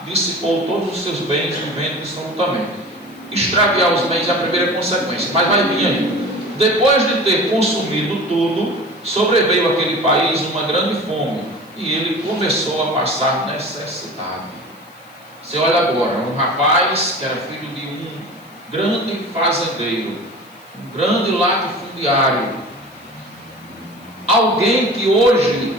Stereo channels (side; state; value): left; noise; hiss, 28 dB below the sound